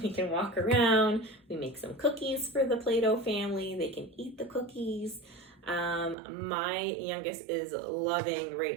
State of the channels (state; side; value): drops out; left; at 6.2 s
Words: we can walk around. We make some cookies for the Play-Doh family. They can eat the cookies. My youngest is loving